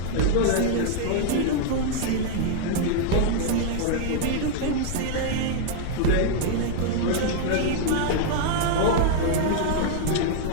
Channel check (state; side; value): different; both; correlation -0.01